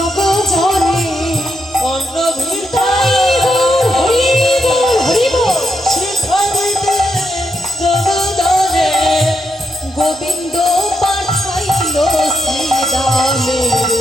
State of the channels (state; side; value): normal; both; correlation 0.82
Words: জনে, অন্ন ভিক্ষা হরি বল হরি বল, শিক্ষা দিতে জগজনে, গোবিন্দ পাঠাইল শ্রীরামে